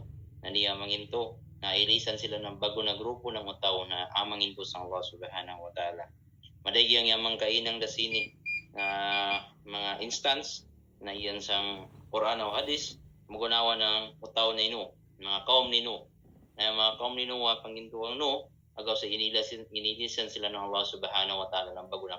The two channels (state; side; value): identical; both; correlation 1.00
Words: na niya manginto, na ilisan sila ng bago na grupo ng utaw na amanginto sa Allah subhanahu wa ta'ala. Madagi ang yamang kainang dasini na mga instance na iyan sang Quran o Hadis, magunawa ng utaw na ino, mga kaum nino. Na mga kaum nino wa pangintuang no, agaw sa inilisan sila ng Allah subhanahu wa ta'ala ng bago